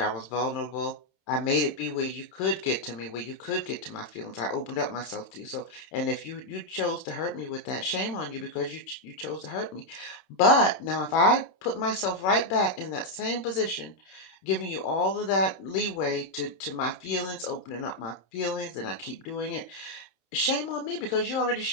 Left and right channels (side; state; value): right; late; 27 ms